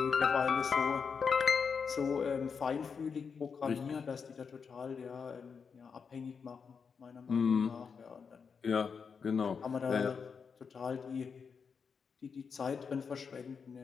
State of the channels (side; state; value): right; quieter; 5.9 dB